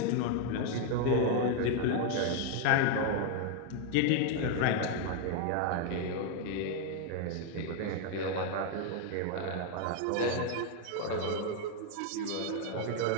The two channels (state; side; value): different; both; correlation 0.01